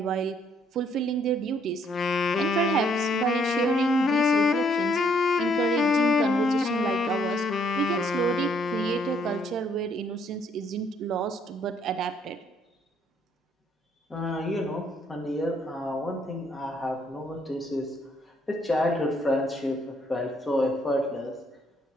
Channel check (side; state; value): both; normal; correlation 0.67